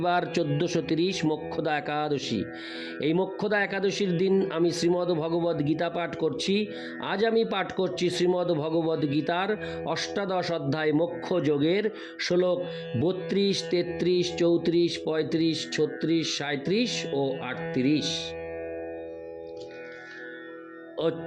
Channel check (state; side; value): identical; both; correlation 1.00